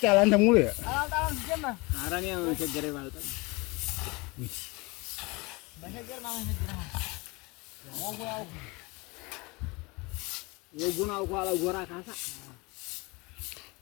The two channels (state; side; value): quieter; right; 25.8 dB